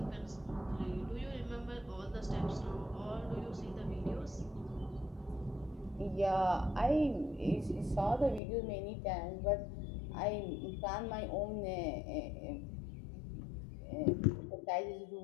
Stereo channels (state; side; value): drops out; right; at 8.4 s